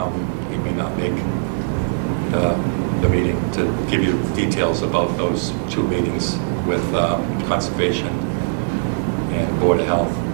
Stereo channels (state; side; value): silent; left; digital silence